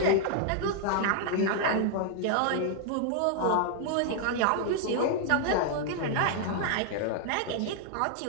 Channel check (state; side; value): different; both; correlation -0.01